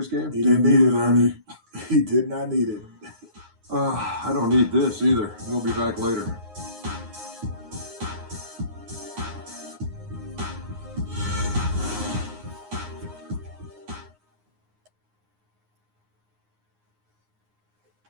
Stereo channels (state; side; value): late; left; 9.6 ms